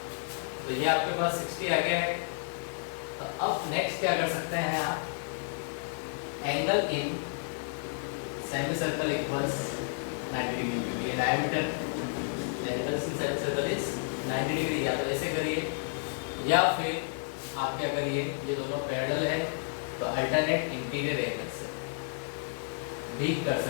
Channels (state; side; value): silent; right; digital silence